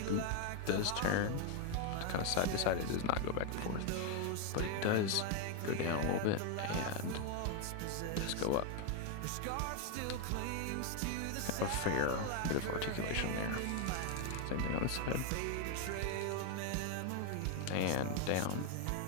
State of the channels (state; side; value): different; both; correlation 0.01